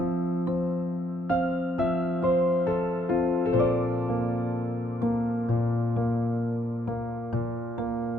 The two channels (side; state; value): both; normal; correlation 0.72